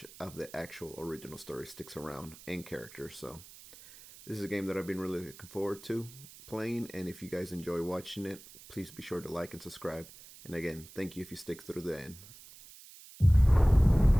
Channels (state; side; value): noise; right; hiss, 19 dB below the sound